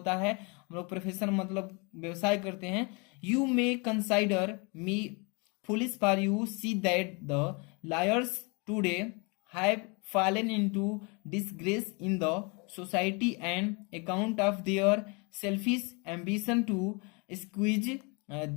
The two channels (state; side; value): quieter; right; 31.2 dB